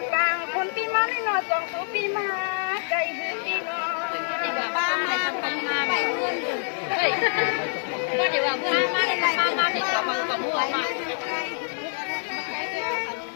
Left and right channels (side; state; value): right; silent; digital silence